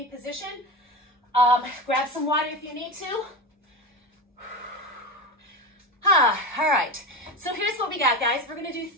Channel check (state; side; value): normal; both; correlation 0.23